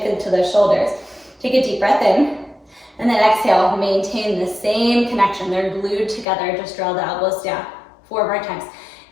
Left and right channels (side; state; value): right; drops out; at 6.2 s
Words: into the shoulders. Take a deep breath in. And then exhale, maintain the same connection. They're glued together. Just draw the elbows down. 4 more times.